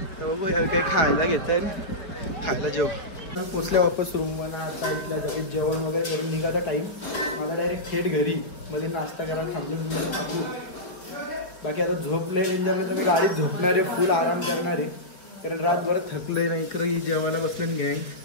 तर बघू काही खायला घेतं खायला जेव पोचल्या वापस रूमवर आता इथल्या जागी जेवण वगैरे करून निघायचा टाईम मला डायरेक्ट थेट घरी मध्ये नाश्ता करायला थांबले टाकू बाकी आता झोपले डेंजरला तर मी गाडीत झोपणार आहे फुल आराम करणार आहे कारण रातभर थकले नाही इकडे जेवायला बसलं गँग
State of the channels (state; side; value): late; right; 4.5 ms